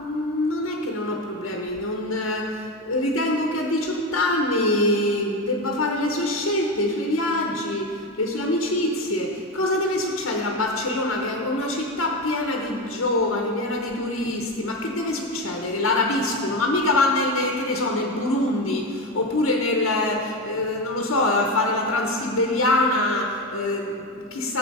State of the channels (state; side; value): normal; both; correlation 0.17